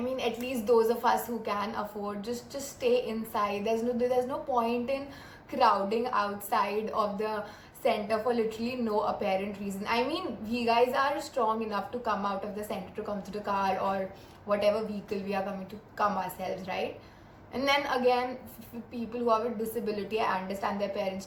at least those of us who can afford, just stay inside. There's no point in crowding outside of the center for literally no apparent reason. I mean, we guys are strong enough to come out of the center, to come to the car or whatever vehicle we are coming to come ourselves, right? And then again, people who have a disability, I understand their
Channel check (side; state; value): both; identical; correlation 1.00